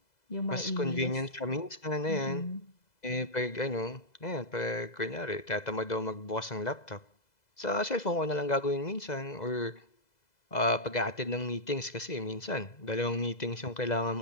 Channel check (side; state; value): right; late; 2.0 ms